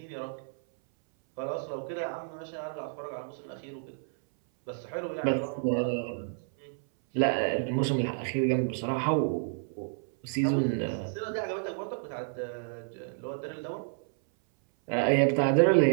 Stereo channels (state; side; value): silent; left; 58 dB below the other